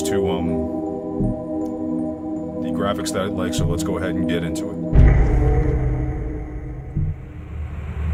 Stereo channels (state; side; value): identical; both; correlation 1.00